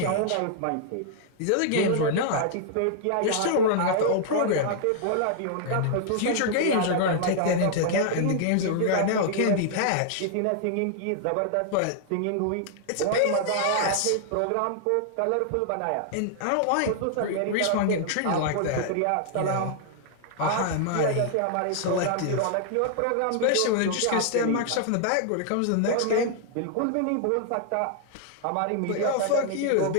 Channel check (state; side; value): different; both; correlation -0.01